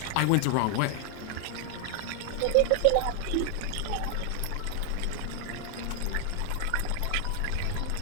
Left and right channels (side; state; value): both; different; correlation 0.00